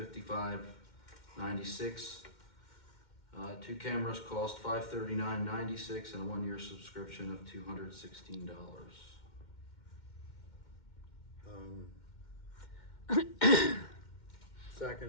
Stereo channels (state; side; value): late; right; 2.1 ms